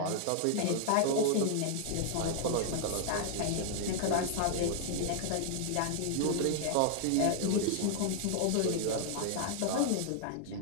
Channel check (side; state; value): both; different; correlation 0.00